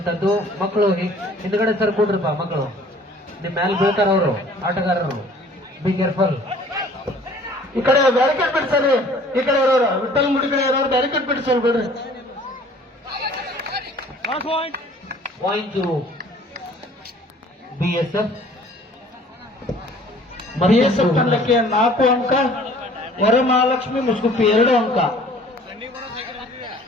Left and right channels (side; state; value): both; normal; correlation 0.52